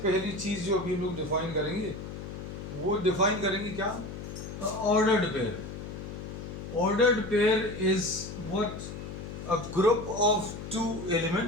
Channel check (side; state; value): left; noise; hum, 9 dB below the sound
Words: पहली चीज जो अभी हम लोग डिफाइन करेंगे वो डिफाइन करेंगे क्या? Ordered pair. Ordered pair is what? A group of two